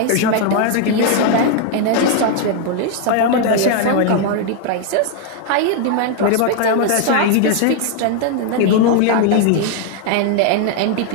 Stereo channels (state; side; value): different; both; correlation 0.00